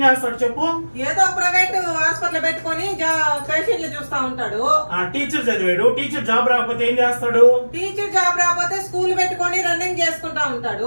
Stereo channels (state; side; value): inverted; both; correlation -1.00